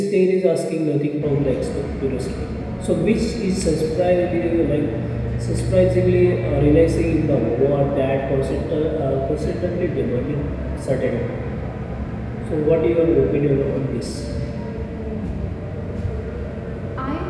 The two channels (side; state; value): both; identical; correlation 1.00